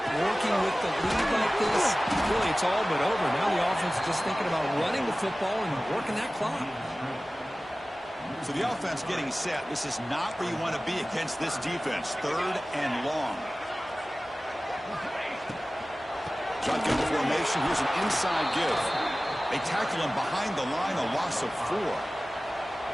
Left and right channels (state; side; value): normal; both; correlation 0.97